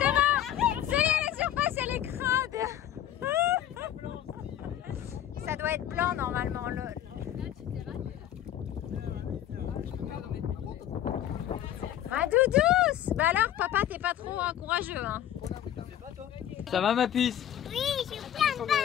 ça y est, la surface elle est crade. Ça doit être blanc normalement, lol. Ah, Doudous! Bah alors, papa, t'es pas trop courageux, hein? Ça va ma puce? Oui, je suis plein de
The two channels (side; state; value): right; quieter; 11.3 dB